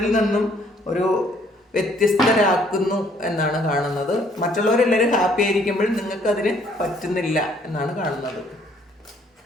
നിന്നും ഒരു വ്യത്യസ്തരാക്കുന്നു എന്നാണ് കാണുന്നത്. മറ്റുള്ളവരെല്ലാവരും ഹാപ്പി ആയിരിക്കുമ്പോഴും നിങ്ങൾക്ക് അതിന് പറ്റുന്നില്ല എന്നാണ് കാണുന്നത്.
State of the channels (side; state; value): both; normal; correlation 0.63